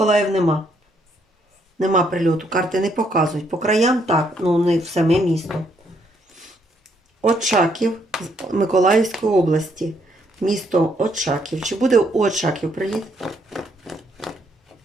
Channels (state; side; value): normal; both; correlation 0.72